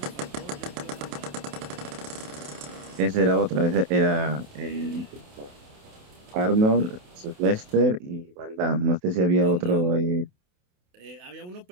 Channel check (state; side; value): late; left; 28 ms